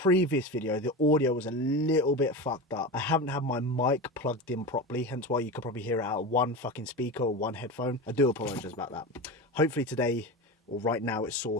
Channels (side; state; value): both; normal; correlation 0.25